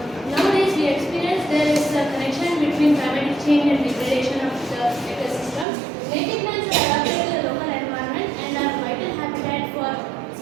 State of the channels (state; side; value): drops out; left; at 5.7 s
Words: Nowadays we experience there is a connection between climatic change and degradation of the ecosystem. Native plants are adapted to the local environment and are vital habitat for